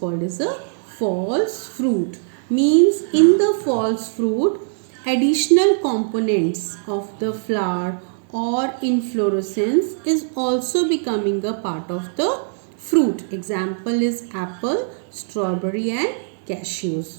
as a false fruit. Means in the false fruit, additional components of the flower or inflorescence is also becoming a part of the fruit. Example is apple, strawberry and cashews.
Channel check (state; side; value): silent; left; digital silence